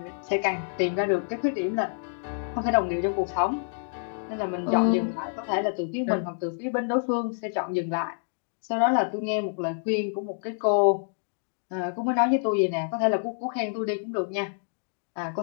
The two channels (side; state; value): right; silent; digital silence